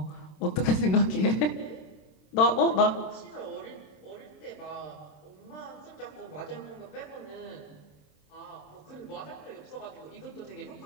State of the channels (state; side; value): late; right; 27 ms